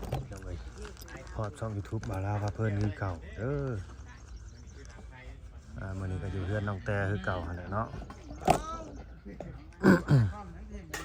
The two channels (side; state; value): both; identical; correlation 1.00